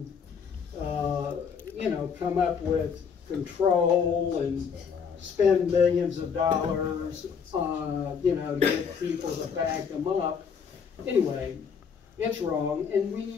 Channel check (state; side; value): quieter; right; 6.4 dB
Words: come up with control and spend millions of dollars, to get people to back them up. Anyway, it's wrong, and